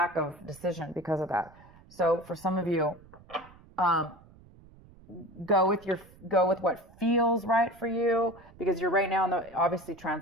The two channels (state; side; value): noise; right; rumble, 24 dB below the sound